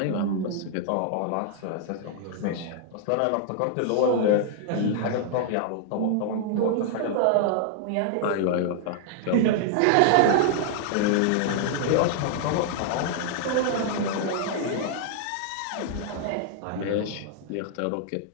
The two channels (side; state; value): both; different; correlation 0.00